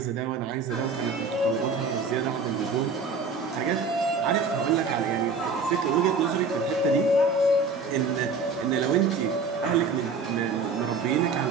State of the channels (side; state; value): left; quieter; 4.2 dB